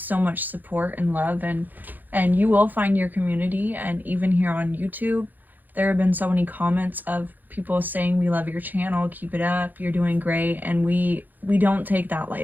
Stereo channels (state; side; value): late; left; 0.085 ms